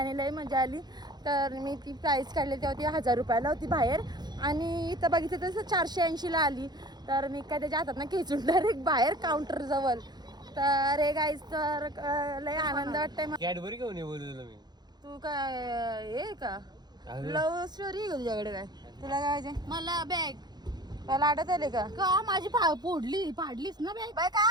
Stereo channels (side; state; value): left; late; 0.20 ms